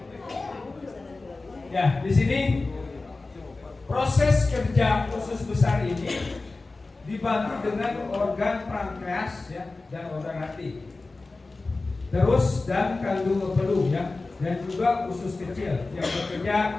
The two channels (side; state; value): right; quieter; 3.5 dB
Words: ya di sini proses kerja usus besar ini dibantu dengan organ pankreas ya dan organ hati. Terus dan kandung peluh ya dan juga usus kecil yang